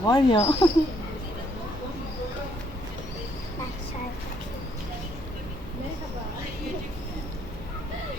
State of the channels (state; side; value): normal; both; correlation 0.69